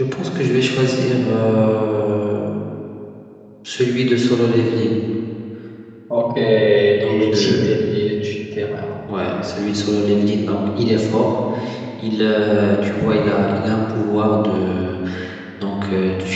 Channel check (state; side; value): identical; both; correlation 1.00